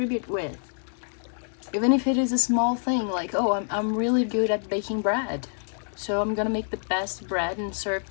with. Even if it is a small thing, like, oh, I'm really good at baking bread, so I'm gonna make the best bread and serve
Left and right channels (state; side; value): silent; right; 60 dB below the other